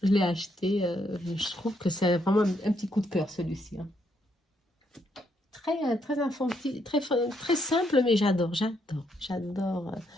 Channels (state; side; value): normal; both; correlation 0.75